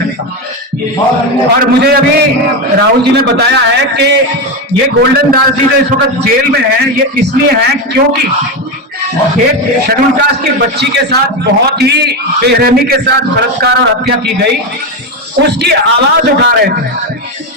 और मुझे अभी राहुल जी ने बताया है कि ये गोल्डन दास जी जो इस वक्त जेल में है, ये इसलिए है क्योंकि एक शेड्यूल कास्ट की बच्ची के साथ बहुत ही बेरहमी के साथ बलात्कार और हत्या की गई, उसकी आवाज उठा रहे थे।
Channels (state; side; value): normal; both; correlation 0.13